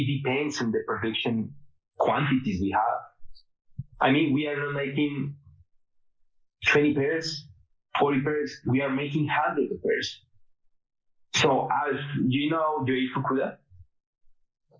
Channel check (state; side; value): identical; both; correlation 1.00